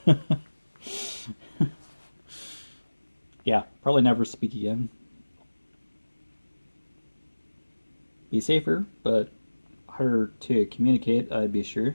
Yeah, probably never speak again. Be safer, but harder to communicate, I'd be sure.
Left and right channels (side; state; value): both; inverted; correlation -1.00